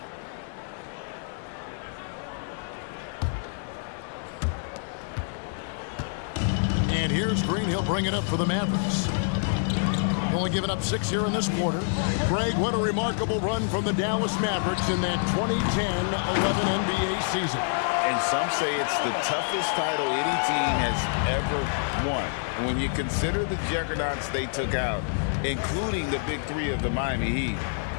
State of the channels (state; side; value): silent; right; 60 dB below the other